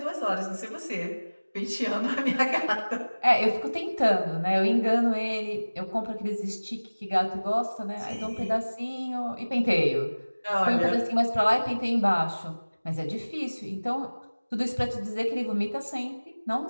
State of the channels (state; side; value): inverted; both; correlation -1.00